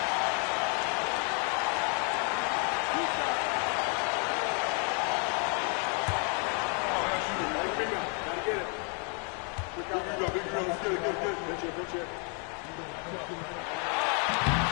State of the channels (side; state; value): right; quieter; 38.7 dB